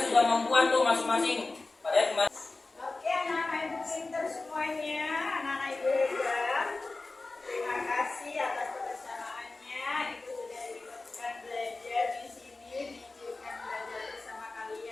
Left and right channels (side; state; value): right; quieter; 3.4 dB